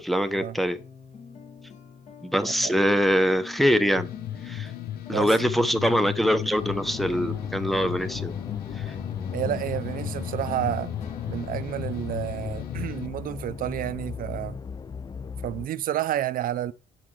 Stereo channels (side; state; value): both; normal; correlation 0.74